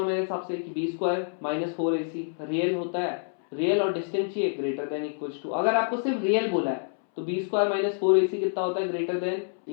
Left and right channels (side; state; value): right; silent; 60 dB below the other